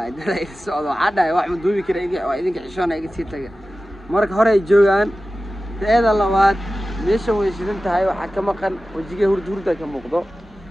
dalay socdo hadda wax ma duubi kara idinka xishoona iga sii taga marka hore ay joogaan teeda labaad meesha way shidan tahay waxa ka maqan wajiga hurda ka muuqdo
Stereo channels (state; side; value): normal; both; correlation 0.95